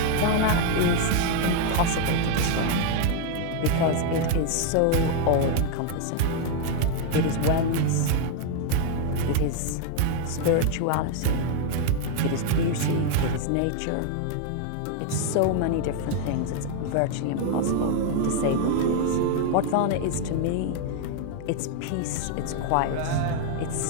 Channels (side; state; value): both; different; correlation 0.00